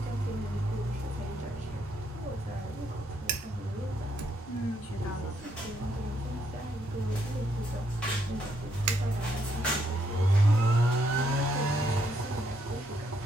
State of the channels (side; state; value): both; normal; correlation 0.74